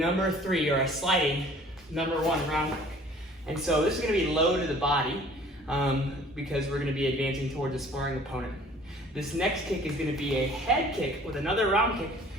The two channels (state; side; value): normal; both; correlation 0.51